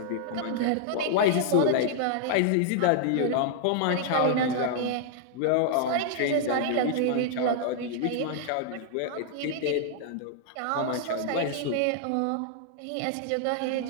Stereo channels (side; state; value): both; different; correlation -0.01